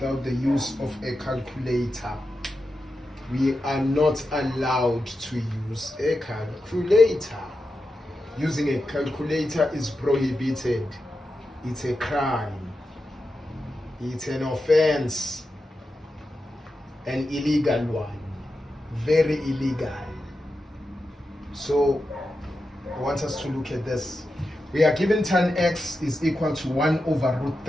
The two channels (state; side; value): normal; both; correlation 0.89